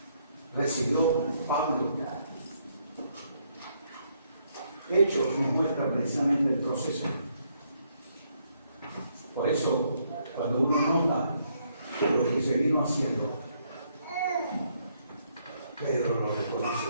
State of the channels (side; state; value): both; inverted; correlation -0.73